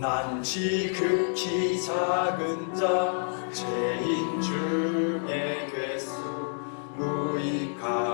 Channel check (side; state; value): right; silent; 59 dB below the other